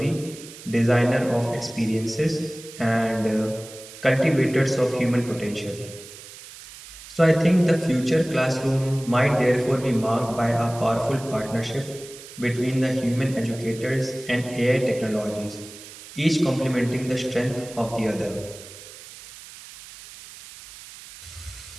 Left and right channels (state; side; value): noise; right; hiss, 16 dB below the sound